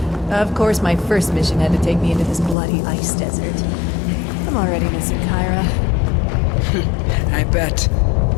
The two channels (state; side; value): drops out; right; at 2.6 s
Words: Of course, my first mission had to take me into this bloody ice desert. I'm already missing Kyra. I bet.